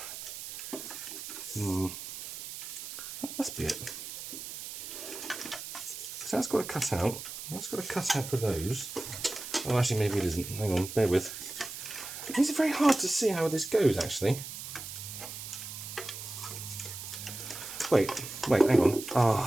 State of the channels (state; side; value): noise; right; hiss, 9 dB below the sound